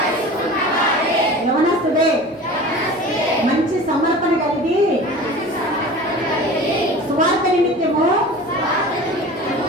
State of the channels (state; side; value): normal; both; correlation 0.38